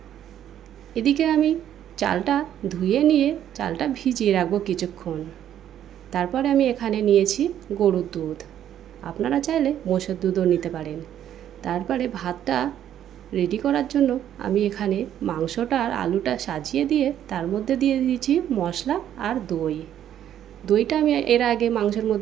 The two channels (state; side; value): quieter; left; 10.7 dB